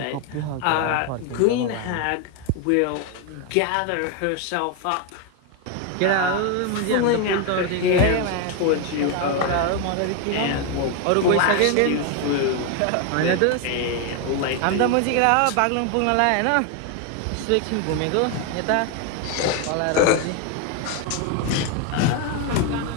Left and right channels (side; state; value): both; different; correlation 0.01